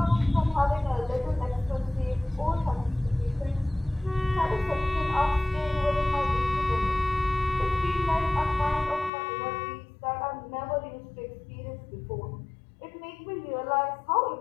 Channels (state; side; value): drops out; right; at 9.1 s